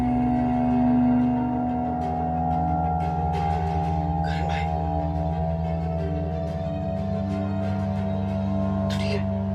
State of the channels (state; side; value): identical; both; correlation 1.00